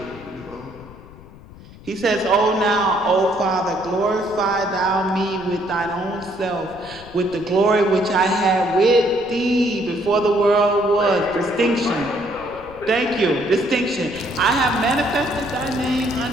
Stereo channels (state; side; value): noise; left; rumble, 19 dB below the sound